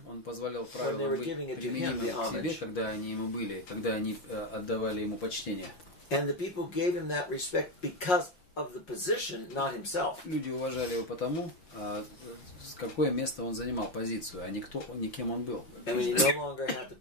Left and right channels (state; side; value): late; right; 5.5 ms